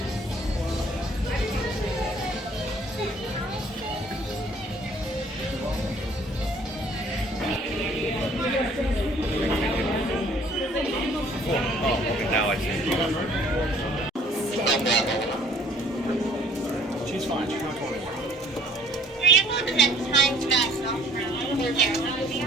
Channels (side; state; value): both; normal; correlation 0.57